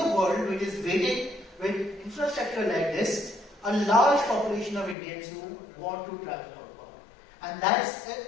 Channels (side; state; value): right; drops out; at 5.0 s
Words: world which is waiting with infrastructure like this, a large population of Indians who want to travel outbound. And that's